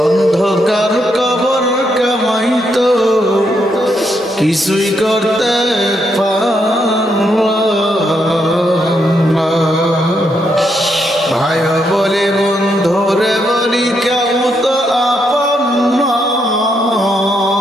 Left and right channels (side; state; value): both; normal; correlation 0.78